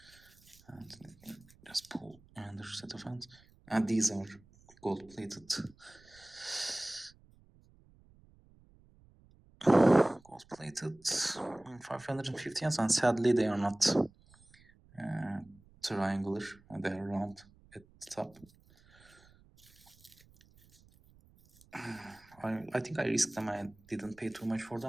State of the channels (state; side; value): noise; right; rumble, 27 dB below the sound